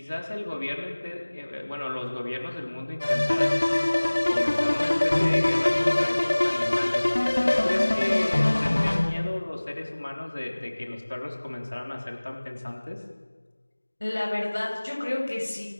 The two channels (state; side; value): inverted; both; correlation -1.00